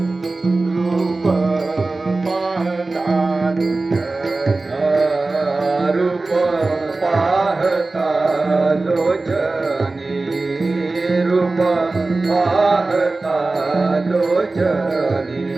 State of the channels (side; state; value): left; quieter; 3.4 dB